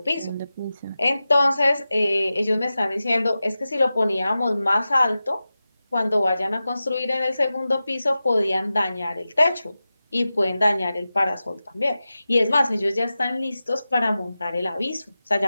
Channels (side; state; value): both; inverted; correlation -0.94